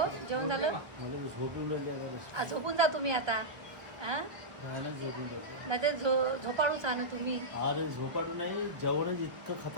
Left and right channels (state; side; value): late; left; 1.2 ms